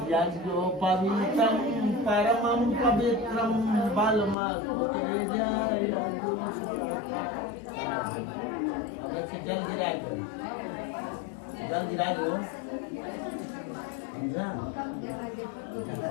जो पवित्रम परमं पवित्रम बलमल जल गिरा दो, समझा?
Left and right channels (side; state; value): right; drops out; at 4.4 s